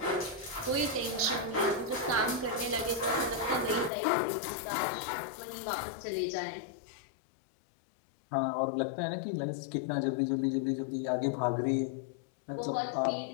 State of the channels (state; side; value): drops out; right; at 3.9 s